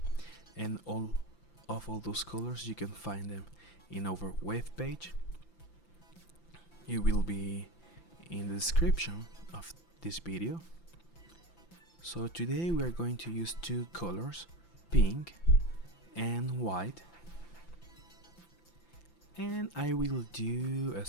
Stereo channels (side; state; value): right; late; 5.9 ms